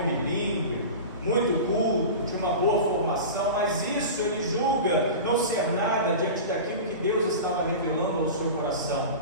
bilíngue, muito culto, tinha uma boa formação, mas isso ele julga não ser nada diante daquilo que Deus estava revelando ao seu coração,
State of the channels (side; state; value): both; inverted; correlation -0.31